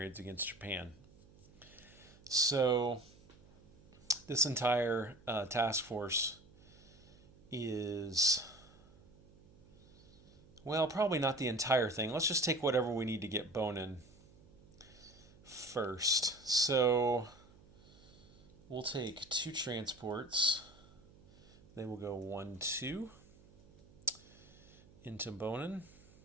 against Japan. So this entire task force is, well, probably not the entire thing. Let's just take whatever we need to get Bonin first. So we'll take 2 transports. They will go 1, 2 into Bonin,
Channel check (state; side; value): noise; right; hum, 24 dB below the sound